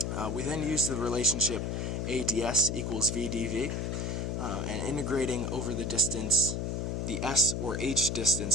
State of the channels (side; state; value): left; noise; hum, 1 dB below the sound